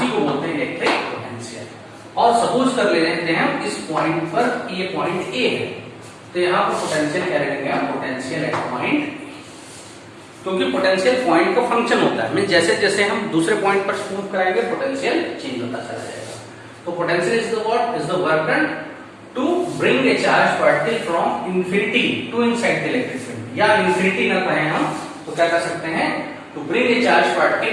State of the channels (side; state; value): both; identical; correlation 1.00